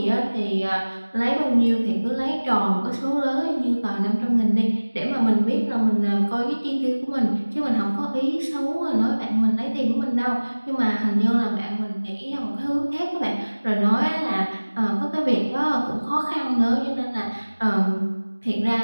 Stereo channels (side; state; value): both; inverted; correlation -1.00